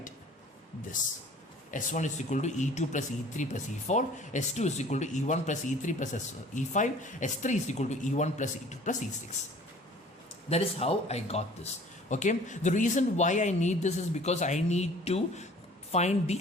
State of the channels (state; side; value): normal; both; correlation 0.50